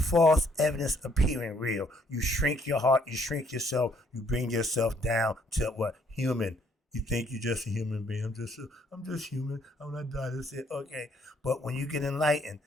evidence appearing real. You shrink your heart, you shrink yourself, you bring yourself down to what? Human. You think you're just a human being. I'm just human. I'm not dying. That's it. Okay. But when you get enlightened,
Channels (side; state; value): both; normal; correlation 0.66